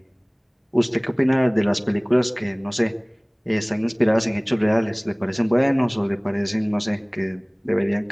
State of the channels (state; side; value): identical; both; correlation 1.00